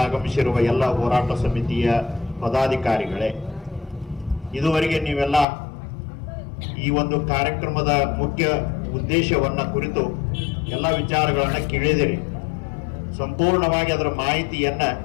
ಆಗಮಿಸಿರುವ ಎಲ್ಲ ಹೋರಾಟ ಸಮಿತಿಯ ಪದಾಧಿಕಾರಿಗಳೇ, ಇದುವರೆಗೆ ನೀವೆಲ್ಲ ಈ ಒಂದು ಕಾರ್ಯಕ್ರಮದ ಮುಖ್ಯ ಉದ್ದೇಶವನ್ನ ಕುರಿತು ಎಲ್ಲ ವಿಚಾರಗಳನ್ನು ಕೇಳಿದಿರಿ. ಸಂಪೂರ್ಣವಾಗಿ ಅದರ ಮಾಹಿತಿಯನ್ನ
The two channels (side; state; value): right; drops out; at 5.5 s